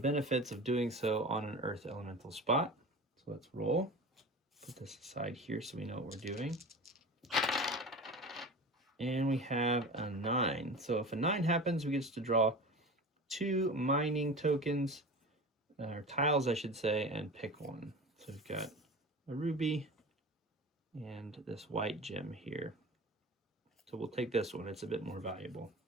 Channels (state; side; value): normal; both; correlation 0.33